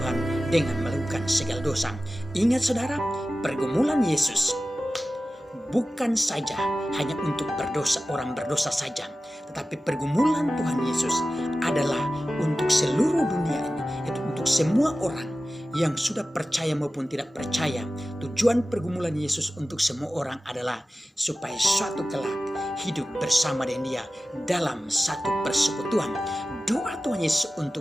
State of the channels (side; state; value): both; normal; correlation 0.95